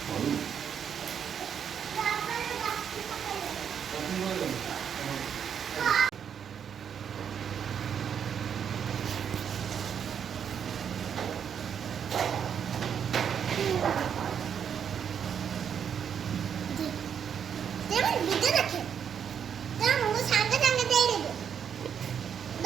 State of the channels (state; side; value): quieter; left; 7.9 dB